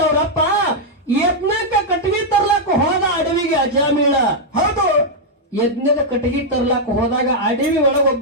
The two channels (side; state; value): both; normal; correlation -0.04